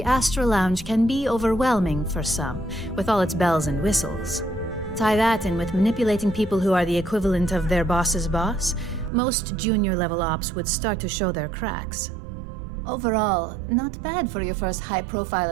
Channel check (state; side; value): drops out; left; at 9.1 s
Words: Astro Lounge can be overwhelming for some, with all its bells and whistles. Tie that in with manipulating people who are the equivalent of their boss's boss, most junior-level ops would start to show their cracks. Overall, not bad for your first high-profile